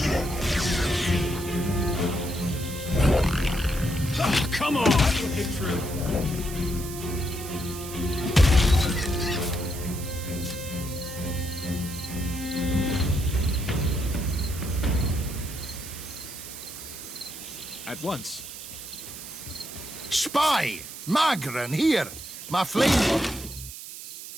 Oh, come on! Hit true. At once. Spy! Magran, here! My flame...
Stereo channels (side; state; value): right; noise; hiss, 11 dB below the sound